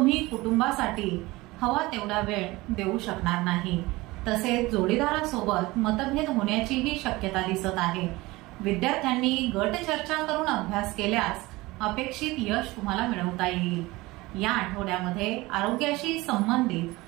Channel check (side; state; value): left; quieter; 20.9 dB